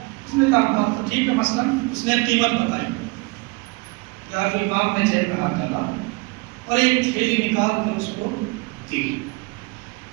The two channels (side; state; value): left; quieter; 27.1 dB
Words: اس نے کہا تو ٹھیک ہے، مثلا اس نے قیمت بتائی، یار امام نے جیب میں ہاتھ ڈالا اور ایک تھیلی نکال کر اس کو دی،